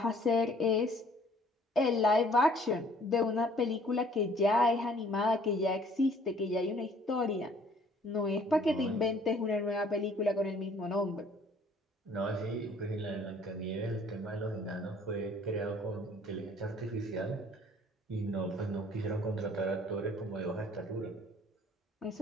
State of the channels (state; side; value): normal; both; correlation 0.57